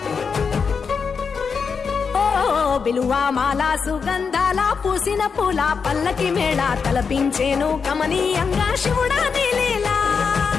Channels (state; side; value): quieter; right; 5.7 dB